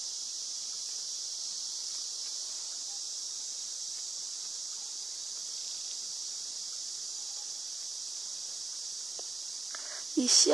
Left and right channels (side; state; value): left; quieter; 3.5 dB